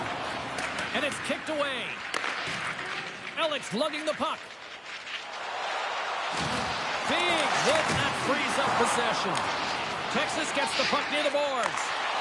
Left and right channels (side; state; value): both; identical; correlation 1.00